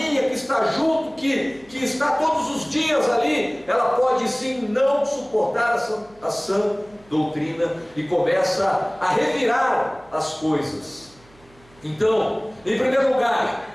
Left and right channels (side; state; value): right; noise; hum, 28 dB below the sound